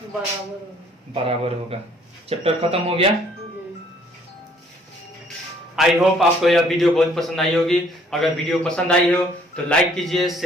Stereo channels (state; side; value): normal; both; correlation 0.61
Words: बराबर होगा। चैप्टर खत्म हो गया। आई होप आपको यह वीडियो बहुत पसंद आई होगी। अगर वीडियो पसंद आई हो तो लाइक कीजिए,